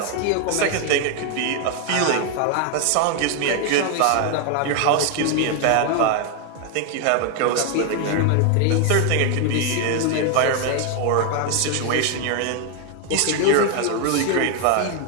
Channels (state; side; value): different; both; correlation 0.01